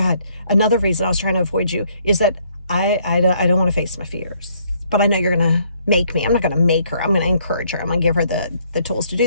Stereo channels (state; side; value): inverted; both; correlation -0.67